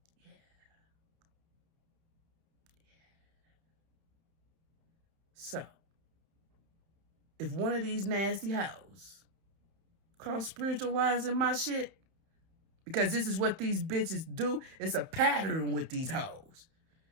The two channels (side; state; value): left; late; 31 ms